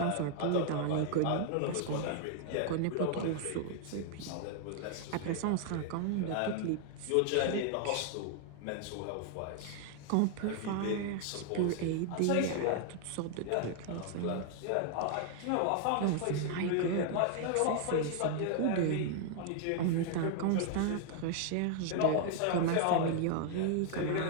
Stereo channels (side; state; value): both; different; correlation 0.00